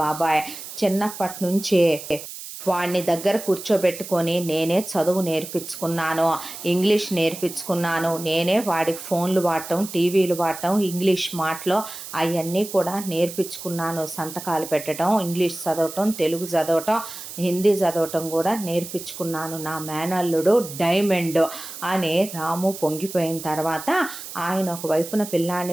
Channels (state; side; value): noise; right; hiss, 11 dB below the sound